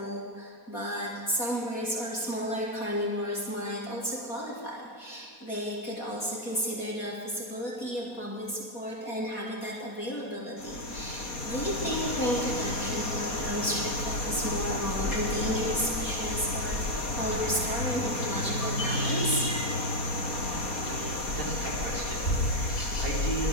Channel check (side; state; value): right; late; 4.2 ms